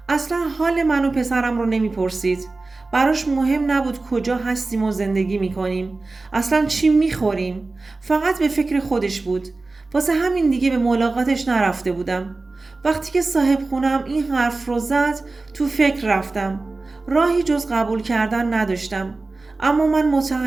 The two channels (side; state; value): left; quieter; 3.5 dB